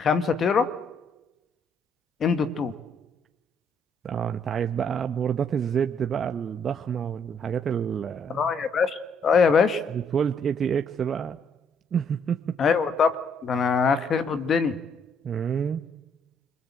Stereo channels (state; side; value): normal; both; correlation 0.68